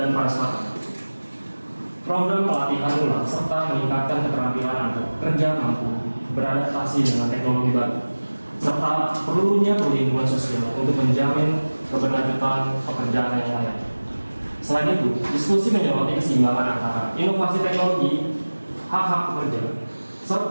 transparan, program pelatihan ulang serta meningkatkan keterampilan kerja mampu beradaptasi dengan teknologi baru, serta perlunya perlindungan sosial untuk menjamin keberlanjutan pekerjaan yang layak. Selain itu, diskusi menyoroti keseimbangan antara inovasi teknologi, hak-hak pekerja,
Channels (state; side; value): inverted; both; correlation -1.00